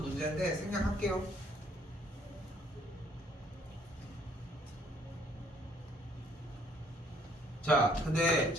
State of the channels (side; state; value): both; normal; correlation 0.63